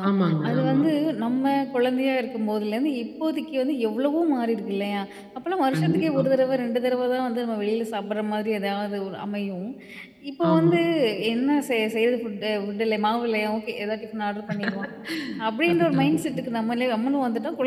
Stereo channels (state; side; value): identical; both; correlation 1.00